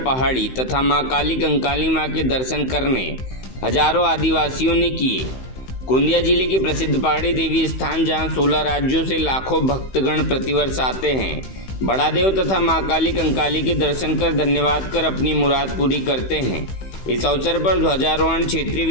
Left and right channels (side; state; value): right; late; 16 ms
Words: पहाड़ी तथा मां काली कंकाली मां के दर्शन करने हजारों आदिवासियों ने किए। गोंदिया जिले की प्रसिद्ध पहाड़ी देवी स्थान जहां 16 राज्यों से लाखों भक्तगण प्रतिवर्ष आते हैं, बड़ादेव तथा मां काली कंकाली के दर्शन कर धन्यवाद कर अपनी मुराद पूरी करते हैं। इस अवसर पर ध्वजारोहण क्षेत्रीय